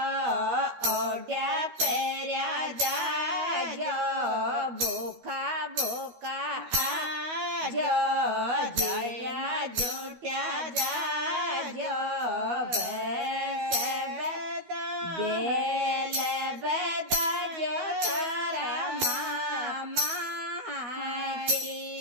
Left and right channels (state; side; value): late; left; 12 ms